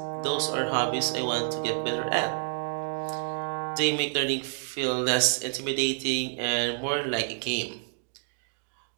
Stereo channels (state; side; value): silent; left; 59 dB below the other